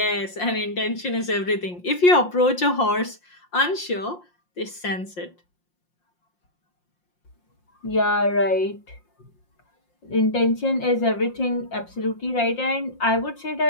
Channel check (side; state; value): right; late; 5.7 ms